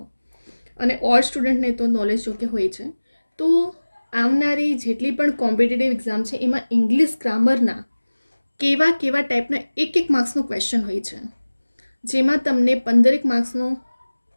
અને ઓલ્ડ સ્ટુડન્ટને તો નોલેજ જોકે હોય છે. તો આવનારી જેટલી પણ કોમ્પિટિટિવ એક્ઝામ છે એમાં ઇંગ્લિશ ગ્રામરના કેવા ટાઈપના એક માર્ક્સનો ક્વેશ્ચન હોય છે, જેમાં તમને 15 માર્ક્સનો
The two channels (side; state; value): both; inverted; correlation -1.00